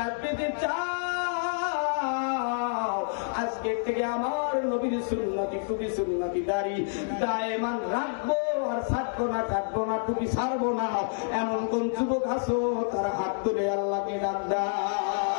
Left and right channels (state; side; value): silent; right; digital silence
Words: পেতে চাও, আজকে থেকে আমার নবীর সুন্নতি, টুপি সুন্নতি দাড়ি দায়মান রাখবো, আর ছাড়বো না, কাটবো না, টুপি ছাড়বো না। এমন কোন যুবক আছো তারা হাত তুলে আল্লাহকে ডাক দাও।